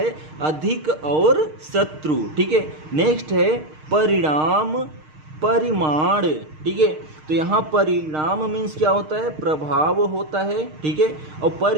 अधिक और शत्रु। ठीक है, नेक्स्ट है परिणाम परिमाण। ठीक है, तो यहाँ परिणाम मीन्स क्या होता है, प्रभाव होता है। ठीक है, और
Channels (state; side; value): late; left; 6.5 ms